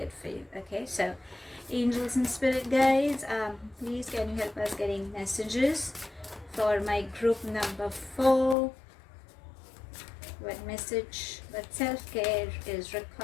for you. Okay, so angels and spirit guides, please can you help us getting messages for my group number 4? What message, what self-care is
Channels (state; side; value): drops out; right; at 8.6 s